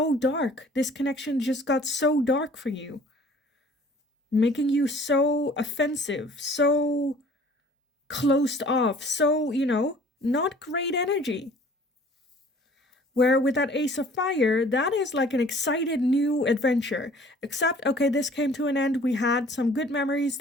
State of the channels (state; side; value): normal; both; correlation 0.52